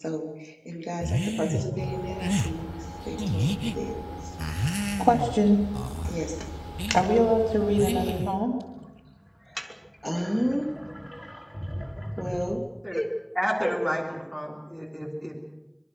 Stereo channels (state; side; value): identical; both; correlation 1.00